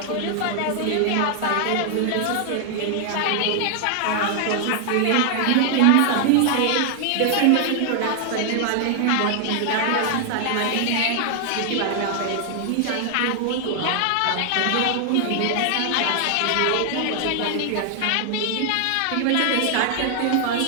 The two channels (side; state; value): both; different; correlation 0.00